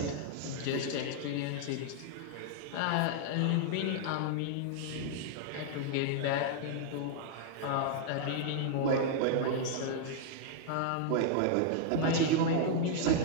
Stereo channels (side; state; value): both; different; correlation -0.01